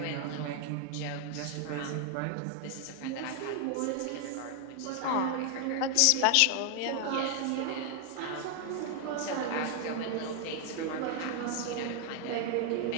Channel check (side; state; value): both; different; correlation 0.00